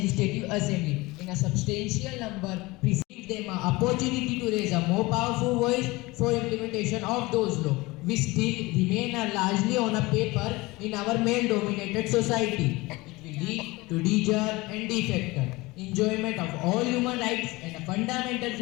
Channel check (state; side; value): quieter; right; 22.0 dB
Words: Assembly in a substantial number, receive them an opportunity to raise a more powerful voice for implementation of those laws, which still remain largely on a paper in our male-dominated society. It will lead to deserve and defector enjoyment of all human rights and a fundamental